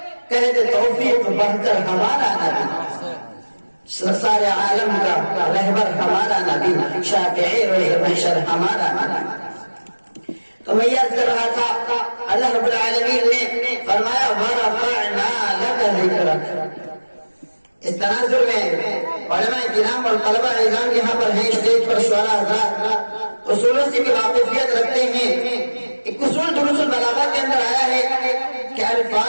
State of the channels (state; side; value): inverted; both; correlation -1.00